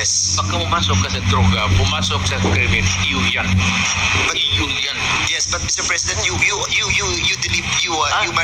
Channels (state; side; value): identical; both; correlation 1.00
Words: Pagka pumasok ka sa droga, pumasok sa krimen, iyo yan. Iyo yan. Yes, but Mr. President, you